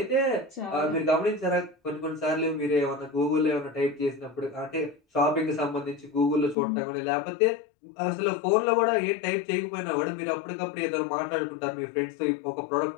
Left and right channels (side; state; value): right; drops out; at 6.6 s